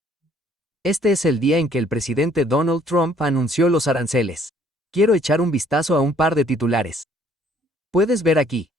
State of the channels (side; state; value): both; normal; correlation 0.61